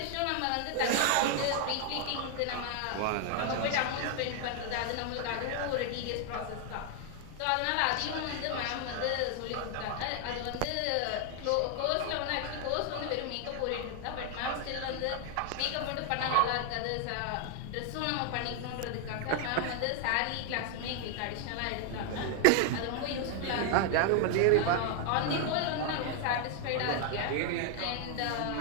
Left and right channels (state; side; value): different; both; correlation 0.00